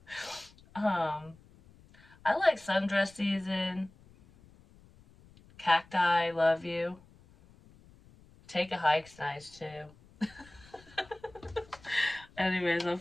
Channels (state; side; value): noise; left; rumble, 25 dB below the sound